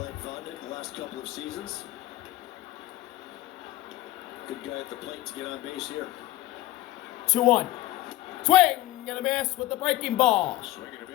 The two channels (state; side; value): quieter; right; 16.2 dB